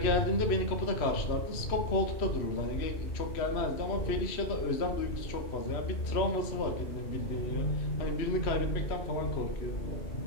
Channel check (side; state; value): right; late; 3.0 ms